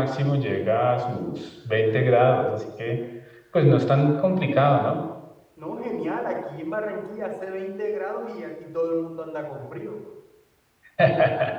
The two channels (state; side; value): identical; both; correlation 1.00